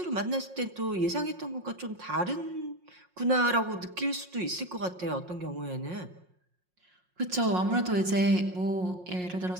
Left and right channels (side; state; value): left; late; 5.5 ms